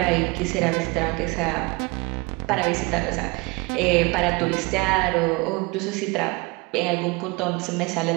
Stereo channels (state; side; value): quieter; left; 26.3 dB